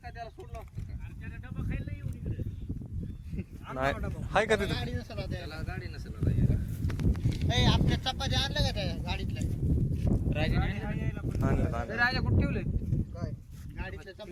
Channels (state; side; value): identical; both; correlation 1.00